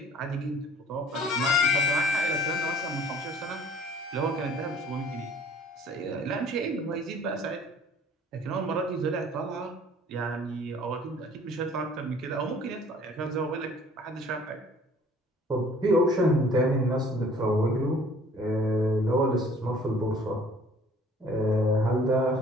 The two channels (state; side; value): normal; both; correlation 0.53